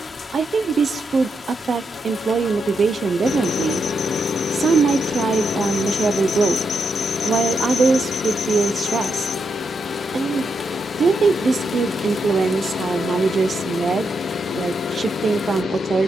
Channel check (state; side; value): normal; both; correlation 0.82